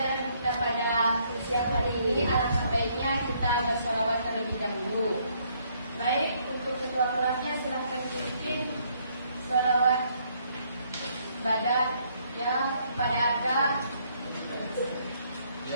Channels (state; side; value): inverted; both; correlation -0.68